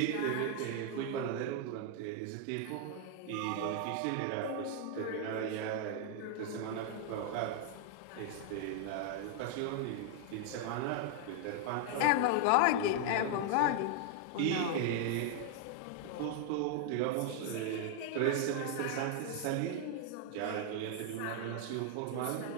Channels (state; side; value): different; both; correlation 0.00